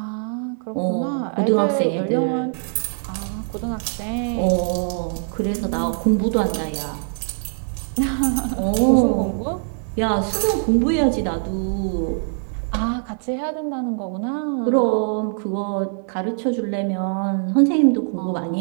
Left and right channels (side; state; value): left; silent; digital silence